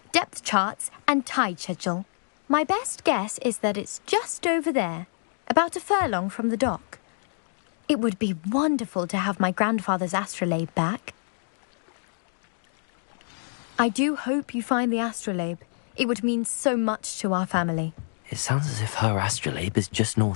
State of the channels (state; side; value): silent; right; digital silence